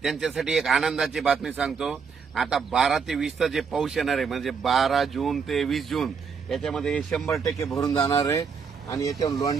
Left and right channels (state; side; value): quieter; left; 5.9 dB